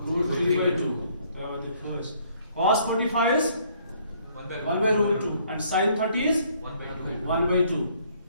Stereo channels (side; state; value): both; inverted; correlation -0.63